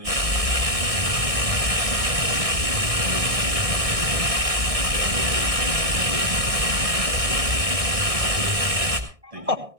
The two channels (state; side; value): late; left; 1.6 ms